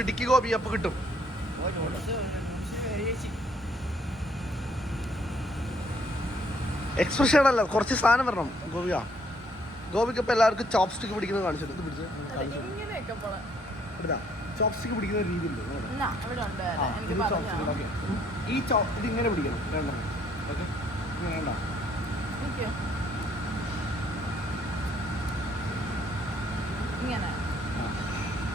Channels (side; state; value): both; normal; correlation 0.66